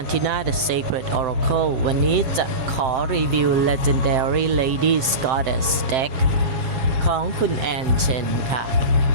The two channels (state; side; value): late; left; 7.7 ms